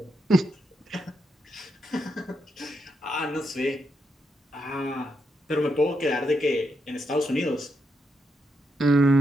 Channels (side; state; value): both; normal; correlation 0.82